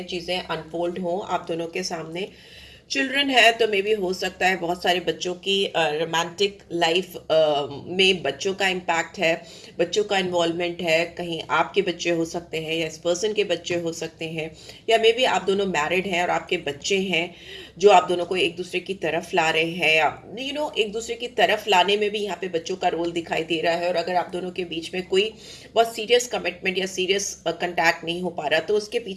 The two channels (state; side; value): identical; both; correlation 1.00